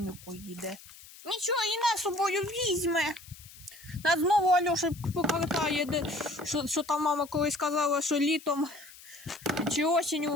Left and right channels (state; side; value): noise; left; hiss, 19 dB below the sound